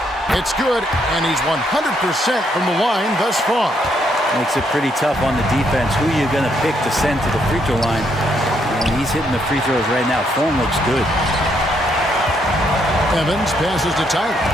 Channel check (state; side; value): normal; both; correlation 0.74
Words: It's good, and he's 100% from the line thus far. Makes it pretty tough on the defense. Who are you going to pick to send to the free throw line? And he's hitting the free throws right now. Form looks good. Evans passes to Tyler.